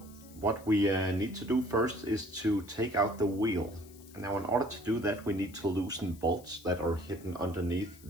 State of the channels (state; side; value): noise; left; hiss, 22 dB below the sound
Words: what we need to do first is to take out the wheel. Now in order to do that, we need to loosen bolts that are hidden underneath